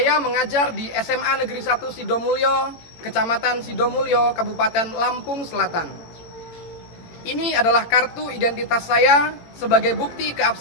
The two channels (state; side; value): late; right; 18 ms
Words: mengajar di SMA Negeri 1 Sidomulyo, Kecamatan Sidomulyo, Kabupaten Lampung Selatan. Ini adalah kartu identitas saya sebagai bukti